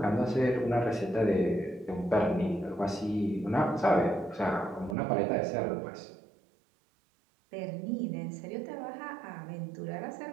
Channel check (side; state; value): left; drops out; at 5.0 s